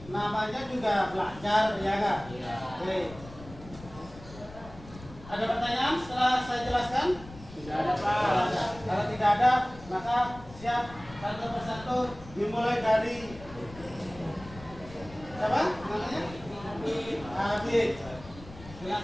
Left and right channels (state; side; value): noise; left; rumble, 17 dB below the sound